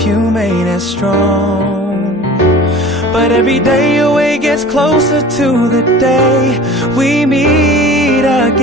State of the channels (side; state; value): both; normal; correlation 0.42